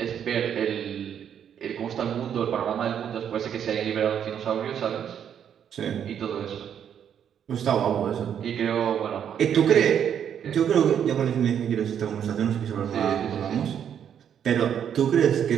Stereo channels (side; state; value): left; quieter; 8.8 dB